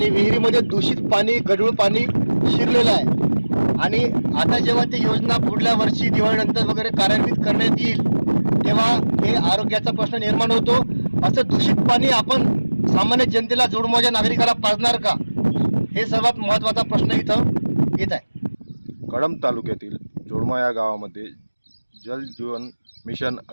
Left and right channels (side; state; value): both; inverted; correlation -1.00